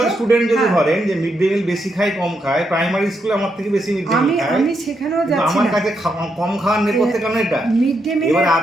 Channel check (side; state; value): both; normal; correlation 0.80